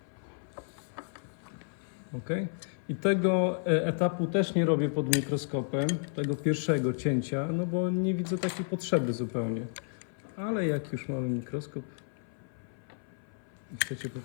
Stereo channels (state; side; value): silent; right; 57 dB below the other